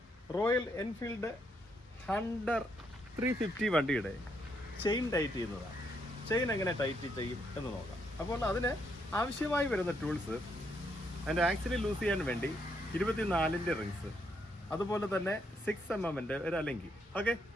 റോയൽ എൻഫീൽഡ് ഹണ്ടർ 350 വണ്ടിയുടെ ചെയിൻ ടൈറ്റ് ചെയ്യുന്നതാണ്. ചെയിൻ എങ്ങനെ ടൈറ്റ് ചെയ്യും എന്ന് നോക്കാം. അപ്പോൾ അതിന് ആവശ്യമായി വരുന്ന ടൂൾസ്, അതിൻ്റെ ആക്സിൽ ലൂസ് ചെയ്യാൻ വേണ്ടി 24-ൻ്റെ റിങ്സ്, അതുപോലെ തന്നെ 6 mm ഒരു അലങ്കി. ഓക്കെ,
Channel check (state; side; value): normal; both; correlation 0.76